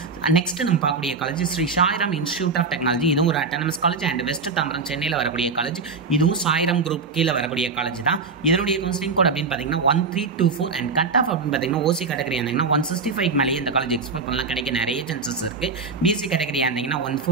நெக்ஸ்ட் நம்ம பார்க்கக்கூடிய college Sri Sairam institute of technology. இதுவும் ஒரு autonomous college and west Tambaram சென்னையில் வரக்கூடிய காலேஜ். இதுவும் சாய்ராம் குரூப் கீழே வரக்கூடிய காலேஜ் தான். இதனுடைய கவுன்சிலிங் கோட் அப்படின்னு பார்த்தீங்கன்னா 1324. அண்ட் கட் ஆஃப் அப்படின்னு பார்த்தீங்கன்னா ஓசி கேட்டகரி இருந்தீங்கன்னா 165க்கு மேலேயே இந்த காலேஜ் எக்ஸ்பெக்ட் பண்ணலாம். கிடைக்க நிறைய சான்சஸ் இருக்குது. பிசி கேட்டகரி இருந்தீங்கன்னா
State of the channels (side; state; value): left; quieter; 4.5 dB